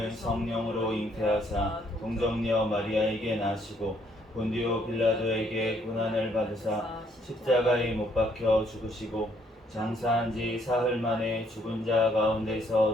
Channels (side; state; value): both; normal; correlation 0.68